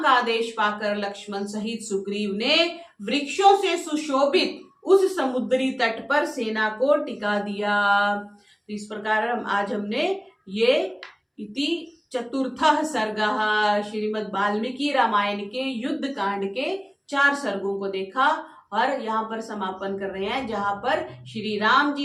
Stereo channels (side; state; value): both; identical; correlation 1.00